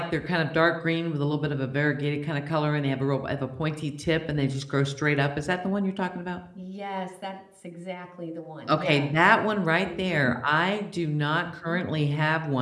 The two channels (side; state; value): both; identical; correlation 1.00